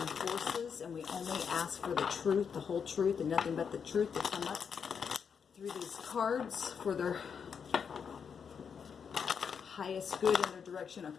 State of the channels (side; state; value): right; quieter; 6.7 dB